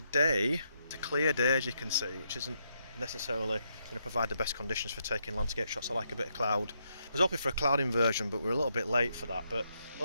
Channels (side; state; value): both; inverted; correlation -0.79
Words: it's a clear day as you can see, which isn't necessarily going to provide the best conditions for taking landscape shots. I like a bit of cloud. I was hoping for a cloud inversion, but we're a little bit late for that. But